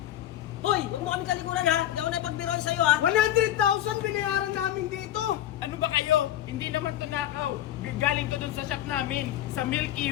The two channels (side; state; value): right; quieter; 12.4 dB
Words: Hoy, huwag mo kami talikuran ha. Hindi ako napagbiroan sa'yo ha. 100,000 binayaran namin dito. Ano ba kayo? Hindi naman to nakaw. Galing to dun sa shop namin. Sa Milky